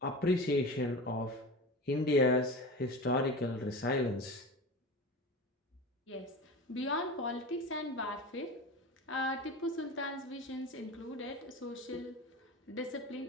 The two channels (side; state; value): both; normal; correlation 0.30